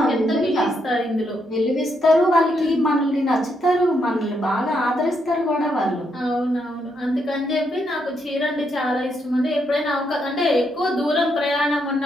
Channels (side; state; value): both; normal; correlation 0.78